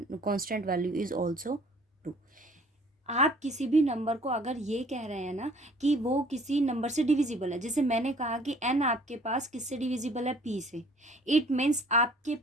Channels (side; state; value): both; normal; correlation 0.55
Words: value is also 2. आप किसी भी नंबर को अगर ये कह रहे हैं ना कि वो किसी नंबर से डिविजिबल है, जैसे मैंने कहा कि n आपके पास किससे डिविजिबल है, p से, इट मीन्स आपके